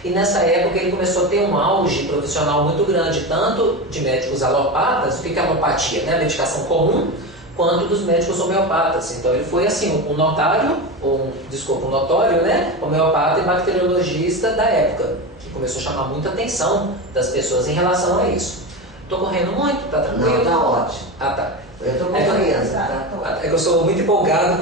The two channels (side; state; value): right; noise; hum, 27 dB below the sound